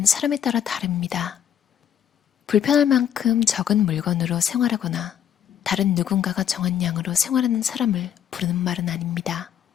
사람에 따라 다릅니다. 불편할 만큼 적은 물건으로 생활하거나 다른 누군가가 정한 양으로 생활하는 사람을 부르는 말은 아닙니다.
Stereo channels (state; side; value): quieter; right; 9.3 dB